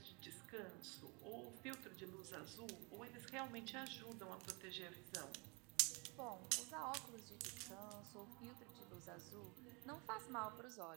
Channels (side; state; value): left; quieter; 30.1 dB